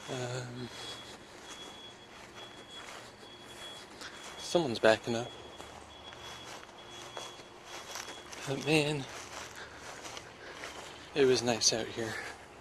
Someone's backing up. But man, it was nice out here.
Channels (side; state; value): both; identical; correlation 1.00